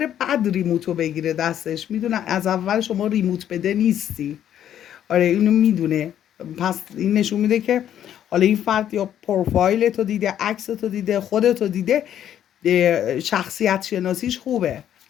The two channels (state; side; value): quieter; right; 10.5 dB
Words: بعد ریموتو بگیره دستش، میدونه از اول شما ریموت بده نیستی. آره اینو میدونه. پس این نشون میده که حالا این فرد یا پروفایل تو دیده، عکس تو دیده، خودتو دیده، شخصیت شناسیش خوبه.